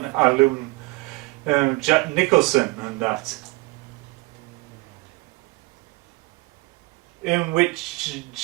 alum, Jack Nicholson, and that. In which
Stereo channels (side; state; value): left; quieter; 24.1 dB